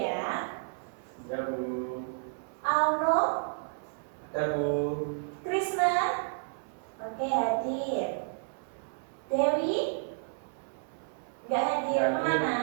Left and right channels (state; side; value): silent; left; 57 dB below the other